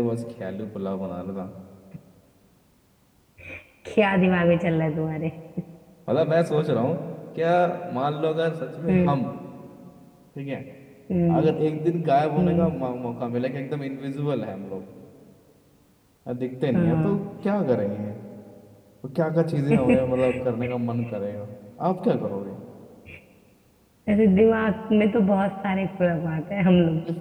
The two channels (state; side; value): identical; both; correlation 1.00